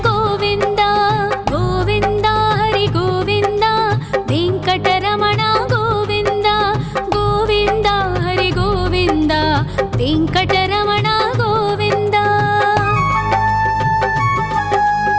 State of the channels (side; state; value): both; identical; correlation 1.00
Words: गोविन्द गोविन्द हरि गोविन्द वेङ्कटरमण गोविन्द गोविन्द हरि गोविन्द वेङ्कटरमण गोविन्द